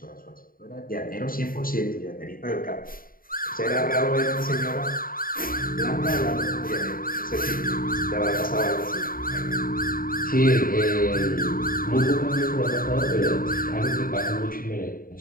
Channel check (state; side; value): late; right; 0.41 ms